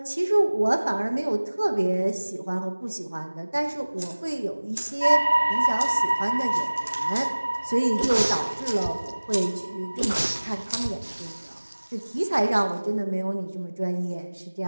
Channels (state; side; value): inverted; both; correlation -1.00